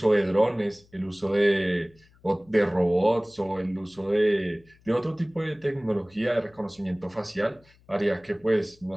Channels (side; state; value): left; noise; hum, 30 dB below the sound